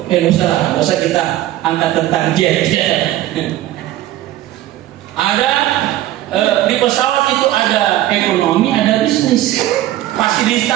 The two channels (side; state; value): left; quieter; 14.2 dB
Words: nggak usah kita angkat tentang jet. Ada di pesawat itu ada ekonomi, ada bisnis.